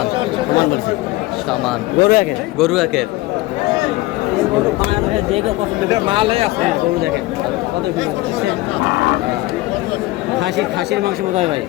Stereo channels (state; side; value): quieter; right; 19.1 dB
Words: বলছে। সামান বলছে। সামান গরু একের। গরু একের। গরু বাংলাদেশে যে কেউ পছন্দ করে। মালই আছে। গরু দেখেন কত সুন্দর দেখছেন? খাসির মাংসের মতো হবে ভাই।